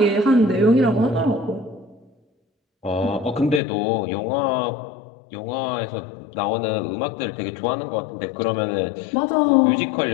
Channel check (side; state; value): right; drops out; at 3.6 s